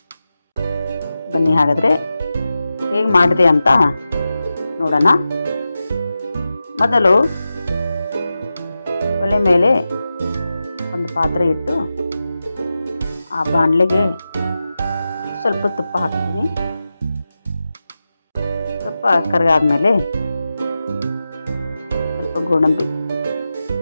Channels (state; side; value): inverted; both; correlation -0.92